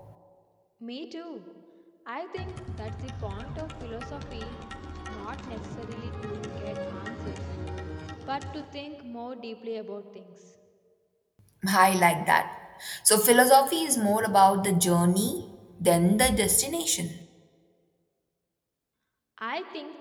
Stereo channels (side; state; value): both; identical; correlation 1.00